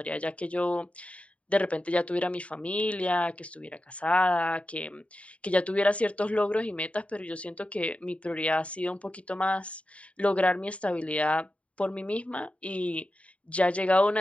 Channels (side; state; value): right; late; 0.064 ms